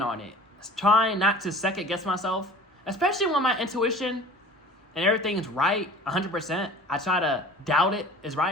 on it. Trying not to second guess myself, especially when my intuition and everything's right 100%. I try to doubt it is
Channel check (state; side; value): normal; both; correlation 0.43